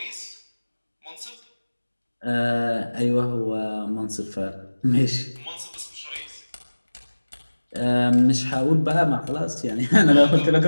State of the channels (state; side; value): inverted; both; correlation -1.00